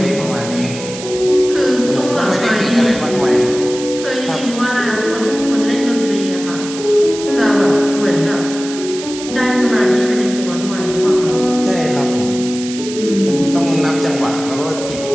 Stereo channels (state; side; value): noise; right; hiss, 11 dB below the sound